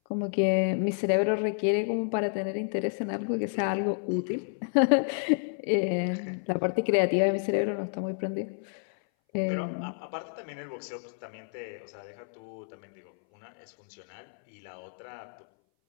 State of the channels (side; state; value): right; silent; 58 dB below the other